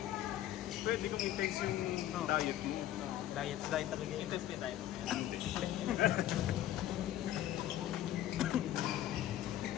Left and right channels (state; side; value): quieter; right; 12.8 dB